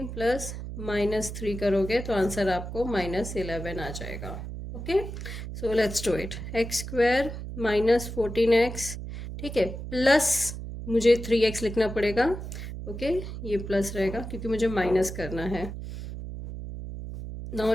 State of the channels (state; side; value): noise; right; hum, 8 dB below the sound